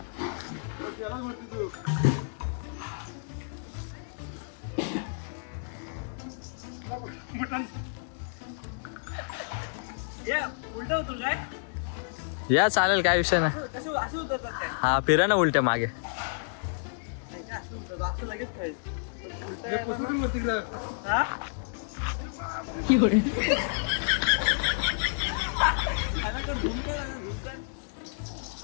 उलट होतो काय. या चालेल, काय विषय नाही. कसं असं उतरतात काय. हा फिरा ना उलट्या मागे. असं उतरतात असं लगेच कळेल. हा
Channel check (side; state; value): right; silent; digital silence